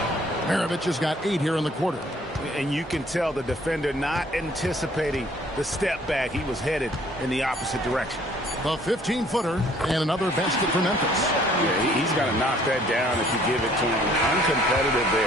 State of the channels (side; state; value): both; normal; correlation 0.59